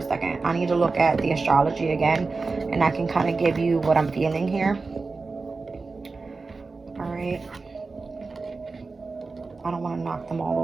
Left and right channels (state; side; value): quieter; left; 4.0 dB